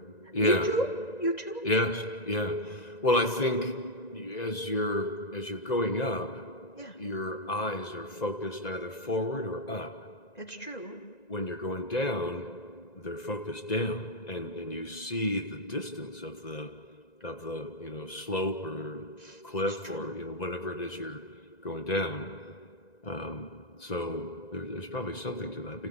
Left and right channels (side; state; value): right; late; 1.9 ms